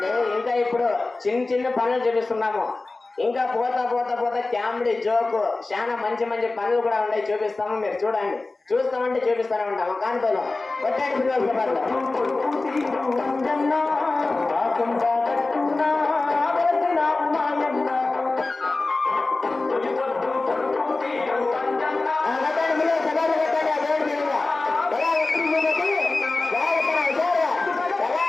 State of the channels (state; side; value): quieter; right; 3.3 dB